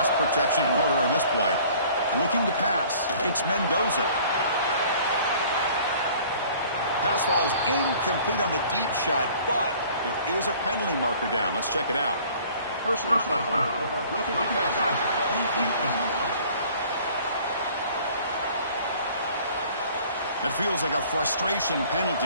protection in order on this play. Looking to pass. It's Mendoza. Pass falls incomplete on the deep shot, but there is a penalty marker down. Let's check it out. Personal foul. Roughing the passer. That feels like a frustration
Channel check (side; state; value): both; inverted; correlation -0.52